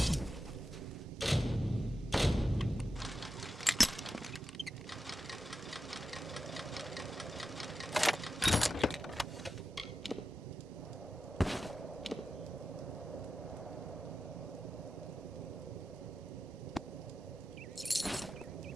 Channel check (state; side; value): normal; both; correlation 0.91